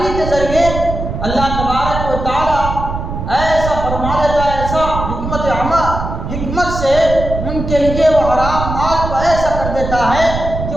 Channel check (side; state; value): right; noise; rumble, 5 dB below the sound